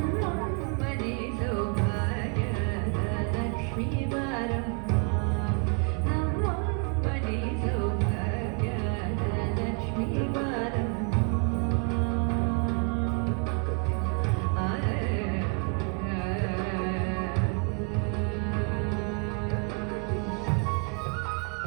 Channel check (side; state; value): left; quieter; 37.5 dB